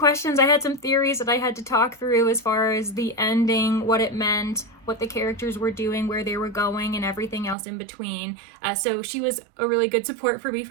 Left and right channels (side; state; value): left; drops out; at 7.6 s